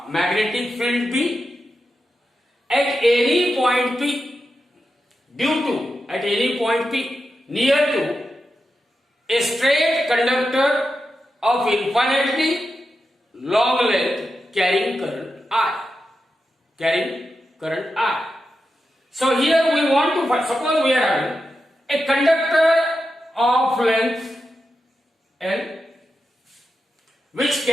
magnetic field B at any point P due to, at any point P near to a straight conductor of infinitely long length carrying current I. Carrying current I. So here we want to find, suppose we are having a conductor of length L which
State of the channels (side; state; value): both; normal; correlation 0.89